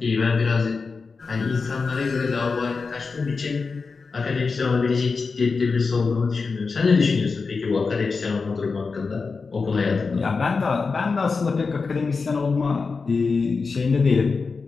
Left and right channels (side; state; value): right; quieter; 4.6 dB